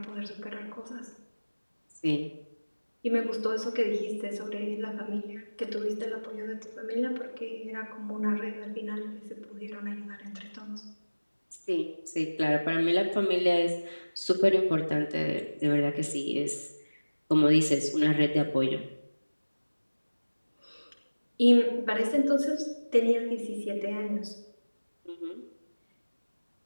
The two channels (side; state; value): both; inverted; correlation -1.00